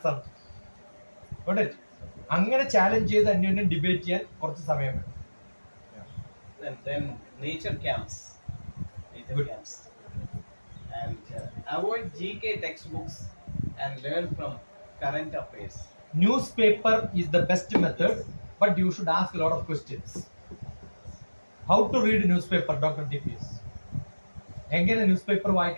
ആണ്. അങ്ങനെ ചാലഞ്ച് ചെയ്ത് അന്യോന്യം ഡിബേറ്റ് ചെയ്യാൻ കുറച്ച് സമയം വേണം. Then nature camps. And avoid GK textbooks and learn from current affairs. Newspaper is the best method, but you should ask a lot of questions. How to read newspaper, Dr. TPS? എങ്ങനെ news paper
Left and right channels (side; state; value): both; inverted; correlation -1.00